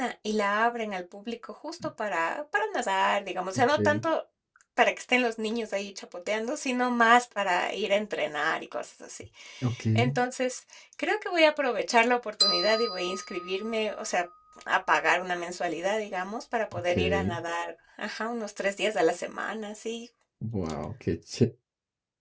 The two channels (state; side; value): identical; both; correlation 1.00